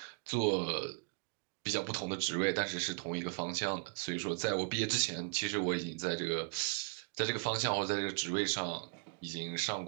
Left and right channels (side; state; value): left; quieter; 39.1 dB